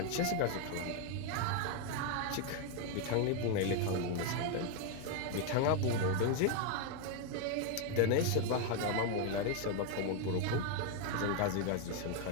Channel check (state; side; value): different; both; correlation 0.01